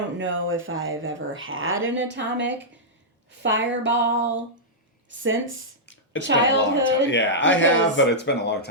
know if I've ever had an Atomic Fireball since childhood. Been a long time. Yeah, I have, but it's been a long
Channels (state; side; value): normal; both; correlation -0.10